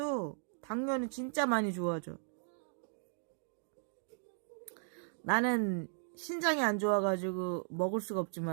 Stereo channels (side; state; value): left; silent; digital silence